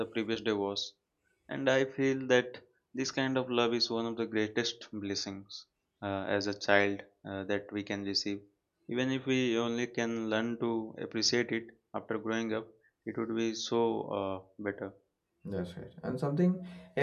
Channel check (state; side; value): identical; both; correlation 1.00